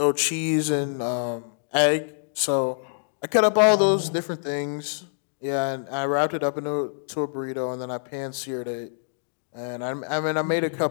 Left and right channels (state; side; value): silent; right; digital silence